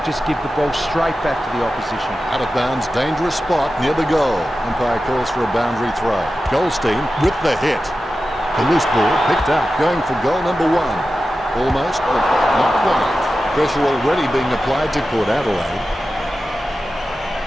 just give the ball straight back to the opposition. Out of bounds, dangerous spot near the goal. Umpire calls for a boundary throw. Goldstein with the hit. The loose ball picked up, going for goal number 1. Almost, but not quite. Pressure already being applied to Port Adelaide.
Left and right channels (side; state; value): both; normal; correlation 0.93